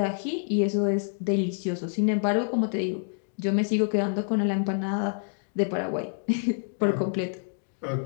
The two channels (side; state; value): right; silent; digital silence